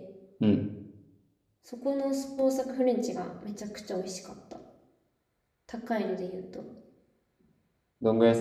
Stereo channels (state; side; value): identical; both; correlation 1.00